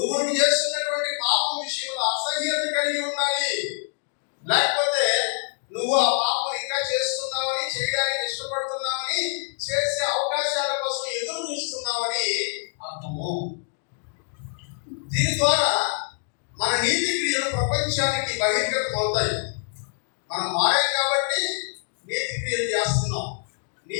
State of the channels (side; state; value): right; silent; digital silence